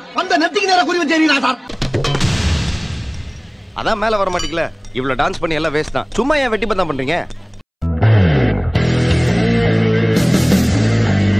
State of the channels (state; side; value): identical; both; correlation 1.00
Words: அந்த நெத்திக்கு நேரா குறி வச்சேரீங்களா சார்? அதான் மேல வர மாட்டீங்களா? இவ்வளவு டான்ஸ் பண்ணி எல்லாம் வேஸ்ட் தான். சும்மா ஏன் வெட்டி பந்தம் பண்றீங்க?